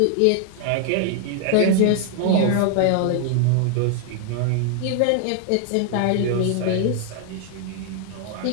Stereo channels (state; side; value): different; both; correlation 0.00